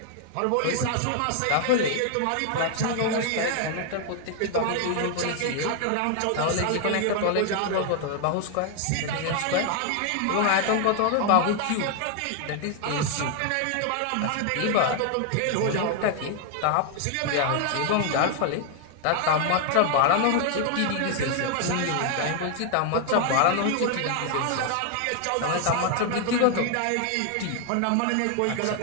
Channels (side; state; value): both; different; correlation 0.00